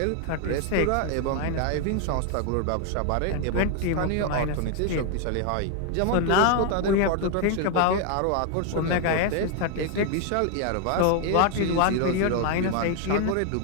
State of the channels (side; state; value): both; different; correlation 0.00